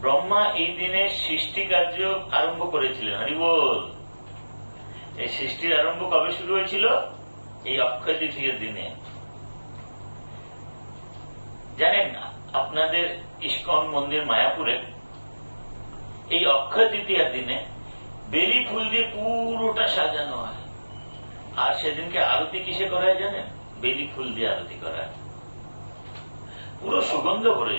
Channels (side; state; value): both; inverted; correlation -1.00